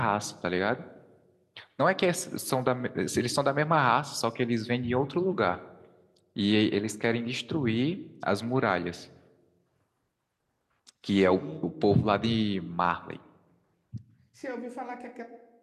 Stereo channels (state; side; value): identical; both; correlation 1.00